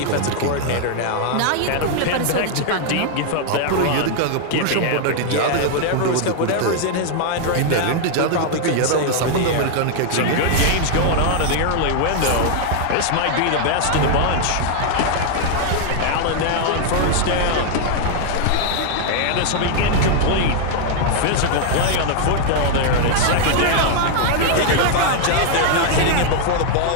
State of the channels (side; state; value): both; different; correlation 0.00